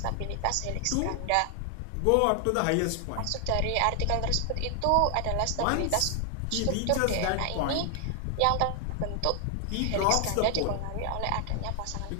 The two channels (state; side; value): different; both; correlation 0.00